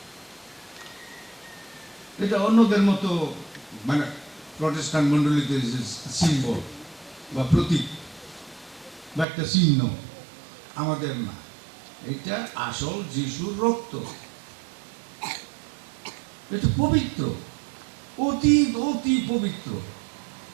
এটা অন্যদের মতো মানে প্রটেস্ট্যান্ট মণ্ডলীতে সিম্বল বা প্রতীক বা একটা চিহ্ন, আমাদের না, এটা আসল যিশুর রক্ত। এটা পবিত্র, অতি অতি পবিত্র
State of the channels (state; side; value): drops out; left; at 9.2 s